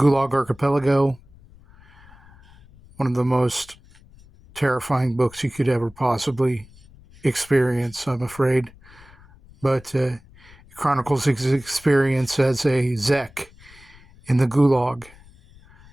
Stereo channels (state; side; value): noise; left; rumble, 24 dB below the sound